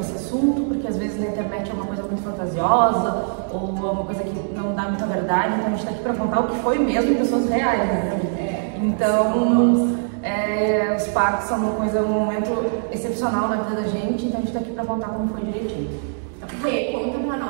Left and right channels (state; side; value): silent; left; digital silence